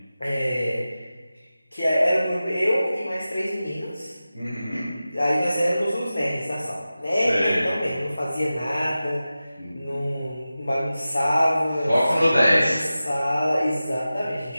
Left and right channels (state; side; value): inverted; both; correlation -0.95